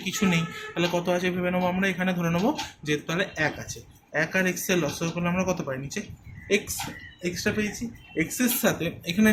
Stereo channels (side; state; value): both; identical; correlation 1.00